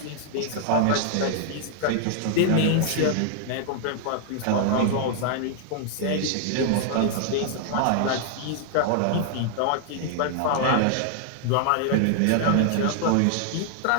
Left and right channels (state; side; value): different; both; correlation 0.00